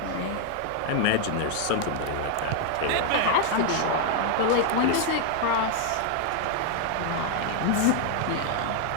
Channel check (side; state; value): both; different; correlation 0.00